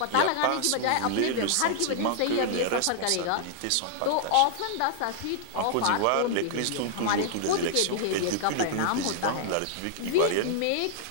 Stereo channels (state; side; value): different; both; correlation -0.01